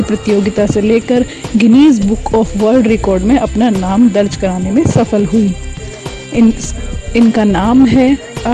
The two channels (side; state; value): both; identical; correlation 1.00